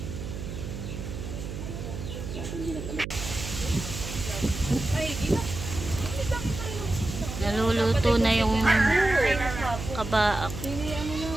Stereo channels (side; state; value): right; noise; hum, 7 dB below the sound